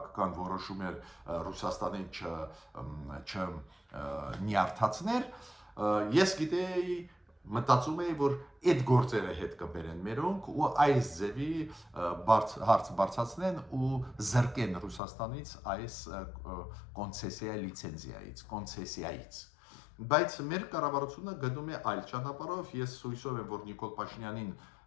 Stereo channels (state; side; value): drops out; right; at 15.0 s